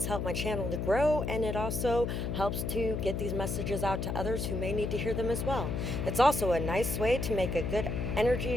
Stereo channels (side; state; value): left; noise; hum, 2 dB below the sound